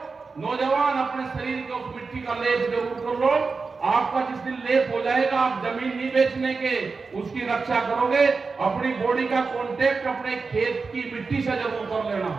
नौजवान अपने शरीर को उस मिट्टी का लेप जरूर कर लो। आपका जिस दिन लेप हो जाएगा, आप जमीन नहीं बेचने के, उसकी रक्षा करोगे। अपनी बॉडी का कांटेक्ट अपने खेत की मिट्टी से जरूर कर लेना,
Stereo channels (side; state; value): left; quieter; 4.5 dB